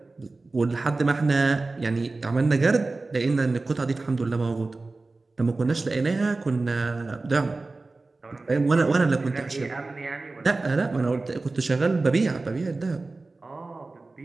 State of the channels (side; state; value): left; quieter; 3.4 dB